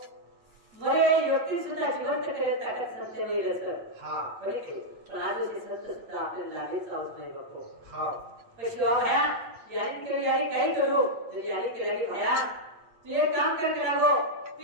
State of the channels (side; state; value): left; late; 8.7 ms